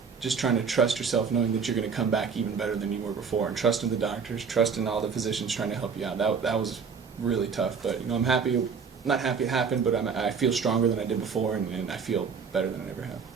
just trying to trust yourself, knowing that you're going to come back even better than you were before, and trusting the doctors, trusting all the physicians trying to help you out. That was really tough. But I'm happy. Not happy it happened, but I feel stronger than I did before, and I feel better than I ever have.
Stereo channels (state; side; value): quieter; left; 5.9 dB